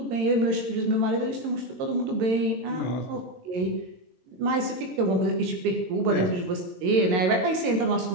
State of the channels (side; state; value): left; late; 22 ms